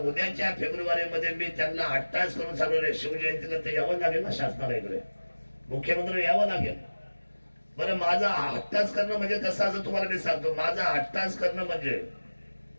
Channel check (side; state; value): both; inverted; correlation -1.00